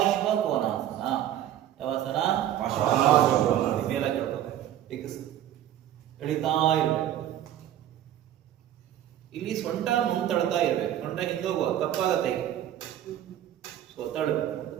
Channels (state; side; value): quieter; left; 11.7 dB